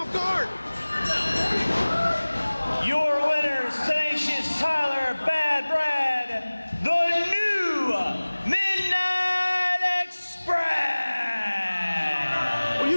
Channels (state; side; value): inverted; both; correlation -1.00